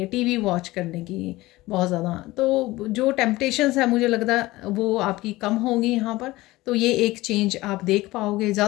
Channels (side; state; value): right; quieter; 19.0 dB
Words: टीवी वॉच करने की बहुत ज़्यादा। तो जो टेम्पटेशंस है मुझे लगता है वो आपकी कम होंगी यहाँ पर। तो ये एक चेंज आप देख पाओगे।